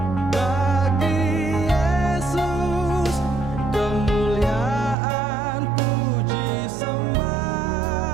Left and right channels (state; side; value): drops out; left; at 5.0 s